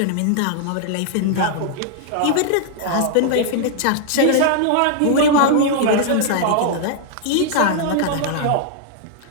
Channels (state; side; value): different; both; correlation -0.01